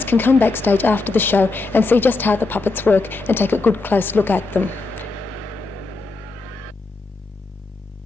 can come backstage after the show and see just how the puppets work and take a good close look at them.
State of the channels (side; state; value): right; quieter; 3.5 dB